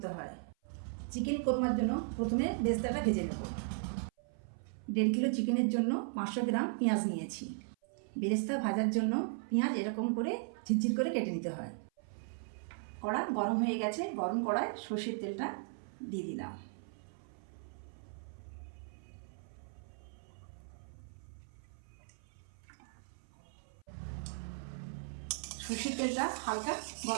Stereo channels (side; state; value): left; silent; 53 dB below the other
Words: হয়। চিকেন কোরমার জন্য প্রথমে বেরেস্তাটা ভেজে নেব। 1.5 কিলো চিকেনের জন্য 500 গ্রাম পেঁয়াজ নিয়েছি। বেরেস্তা ভাজার জন্য পেঁয়াজ এরকম করে ঝিরঝির করে কেটে নিতে হয়। কড়া গরম হয়ে গেছে, গরম কড়ায় সর্ষের তেলটা দিয়ে দিলাম। সর্ষের তেলটা হালকা